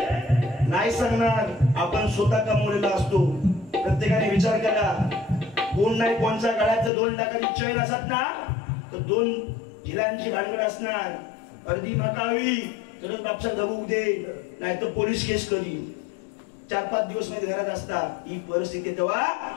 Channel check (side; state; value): right; drops out; at 6.9 s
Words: नाही सांगणार. आपण स्वतः कमवलेला असतो. प्रत्येकाने विचार करा कोण नाही कोणच्या गळ्यात 2 लाखाची चैन असत ना तर 2 झिलांची भानगड असणार. अर्धी माकावी तरच बापसा धबूक दे नाही तर पोलीस केस करीन. 4-5 दिवस मध्ये घरात असतात. ही परिस्थिती तेव्हा